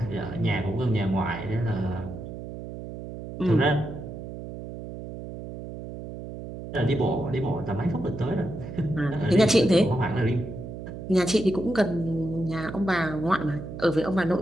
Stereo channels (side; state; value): right; noise; hum, 10 dB below the sound